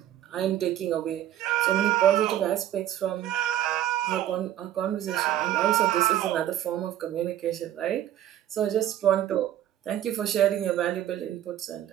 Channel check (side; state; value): left; quieter; 12.0 dB